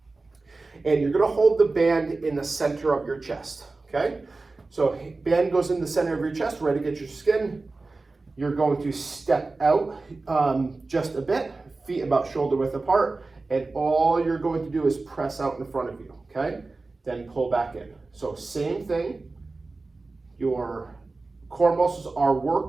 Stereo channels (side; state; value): left; quieter; 3.5 dB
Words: And you're gonna hold the band in the center of your chest, okay? So band goes in the center of your chest, ready to get your skin. You're going to step out just a bit, feet about shoulder width apart, and all you're going to do is press out in front of you, okay? Then pull back in. So same thing, your core muscles are